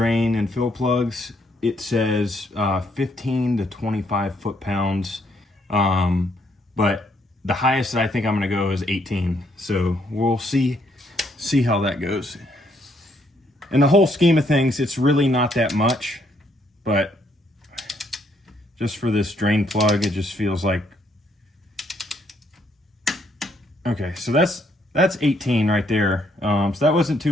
and fill plugs, it says 15 to 25 foot-pounds, but the highest that I think I'm gonna go is 18. So we'll see how that goes. In the whole scheme of things, it's really not that much, but just for this drain plug, it just feels like, okay, so that's 18 right there. So that wasn't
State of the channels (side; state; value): both; normal; correlation 0.71